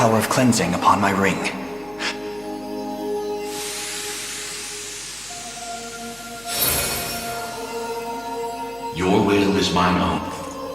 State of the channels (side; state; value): left; noise; hum, 25 dB below the sound